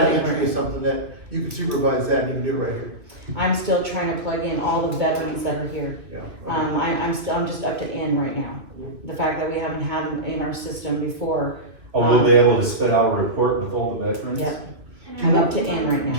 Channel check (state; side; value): late; left; 2.5 ms